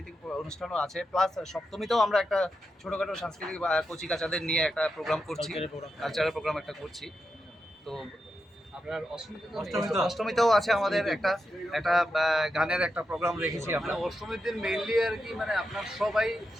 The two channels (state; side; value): normal; both; correlation 0.87